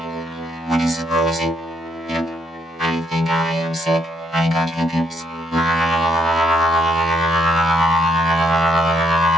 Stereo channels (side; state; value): both; normal; correlation 0.73